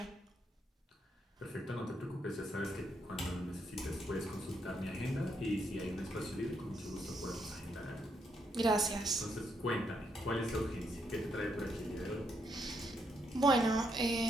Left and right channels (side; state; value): both; normal; correlation 0.77